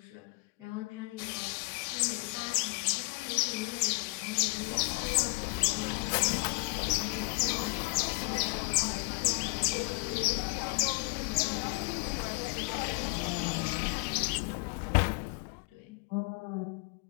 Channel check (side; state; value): right; quieter; 31.3 dB